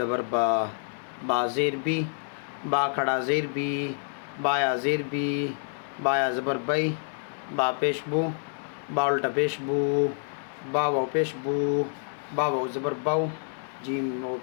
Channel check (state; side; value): silent; right; 57 dB below the other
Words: با، با زیر بی، با کھڑا زیر بی، بایا زیر بی، بایا زبر بئی، با پیش بو، با الٹا پیش بو، با واو پیش بو، با واو زبر باو، جیم واو